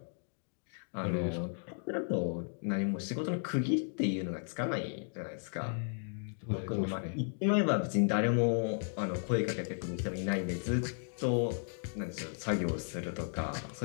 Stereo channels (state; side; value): silent; right; digital silence